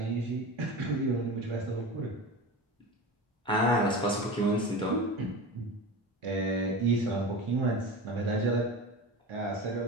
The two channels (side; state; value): both; normal; correlation 0.29